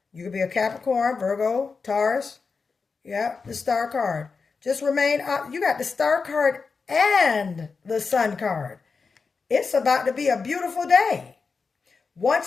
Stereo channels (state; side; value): quieter; right; 4.8 dB